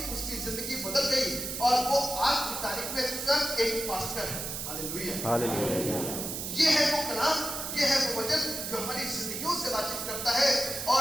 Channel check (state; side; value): noise; right; hiss, 5 dB below the sound